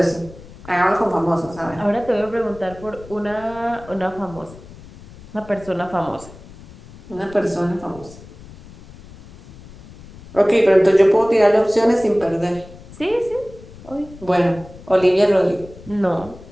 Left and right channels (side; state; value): left; noise; rumble, 19 dB below the sound